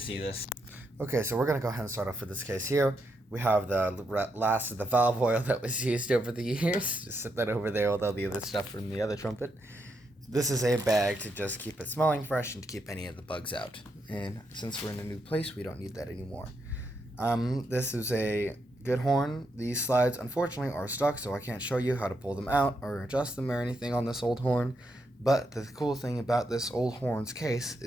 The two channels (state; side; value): normal; both; correlation 0.81